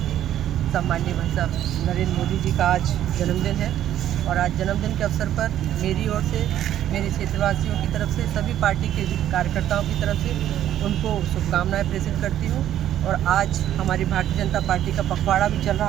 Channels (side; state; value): left; quieter; 11.6 dB